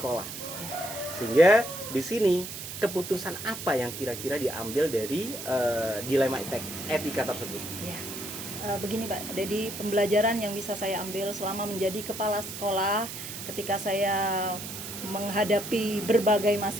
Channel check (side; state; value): right; noise; hiss, 8 dB below the sound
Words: Sehingga di sini keputusan apa yang kira-kira diambil dari dilema etika tersebut? Ya. Begini Pak, jadi pembelajaran yang bisa saya ambil selama menjadi kepala sekolah ketika saya menghadapi berbagai